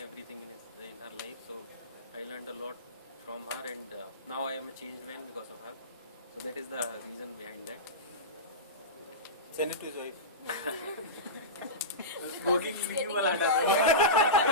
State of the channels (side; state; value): both; normal; correlation -0.18